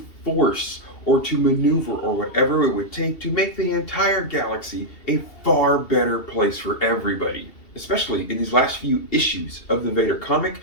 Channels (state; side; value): late; right; 2.7 ms